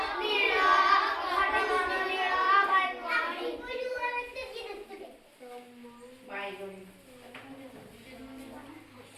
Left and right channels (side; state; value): both; identical; correlation 1.00